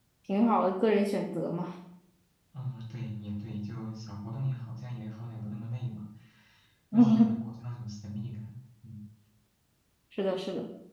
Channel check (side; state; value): both; identical; correlation 1.00